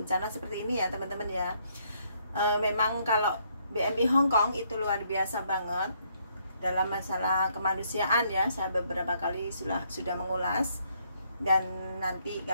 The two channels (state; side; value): inverted; both; correlation -0.71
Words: seperti ini ya teman-teman ya. Memang kalau BMI Hong Kong itu luar biasa banget dalam masalah kemanusiaan ya. Saya beberapa kali sudah mengulas, dan nanti